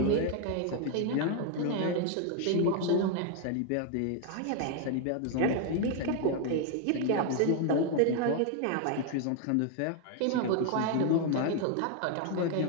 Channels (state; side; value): different; both; correlation 0.00